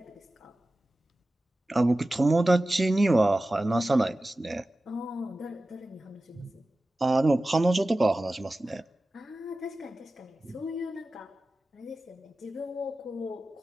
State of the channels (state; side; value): normal; both; correlation 0.95